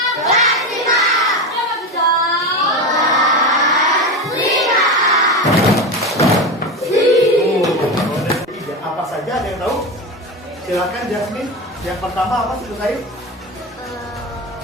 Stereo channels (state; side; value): normal; both; correlation 0.20